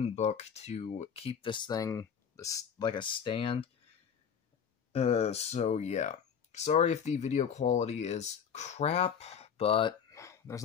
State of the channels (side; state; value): right; quieter; 7.4 dB